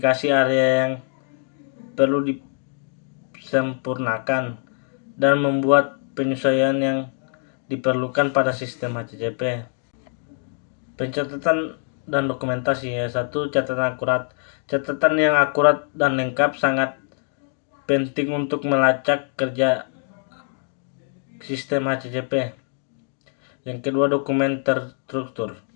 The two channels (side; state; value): right; silent; 57 dB below the other